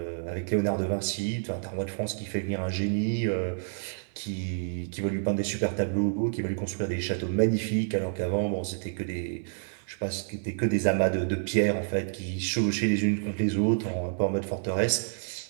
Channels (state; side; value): silent; left; digital silence